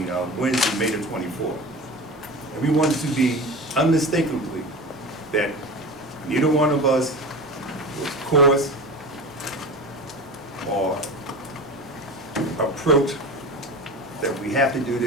Wednesday, May the 24th. And we wanted to be unmistakably that neither one of us was coerced or approach that we have to do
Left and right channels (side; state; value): both; normal; correlation 0.31